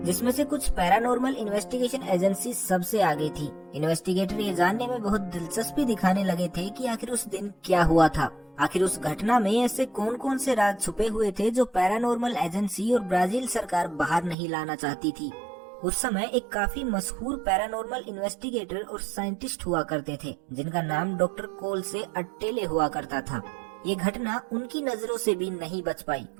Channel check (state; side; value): drops out; left; at 14.4 s